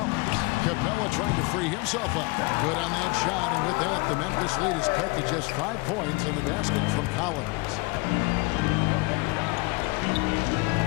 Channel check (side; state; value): right; quieter; 26.3 dB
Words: Capella trying to free himself up. Good on that shot, and with that, the Memphis lead is cut to just 5 points in the basket from Collins.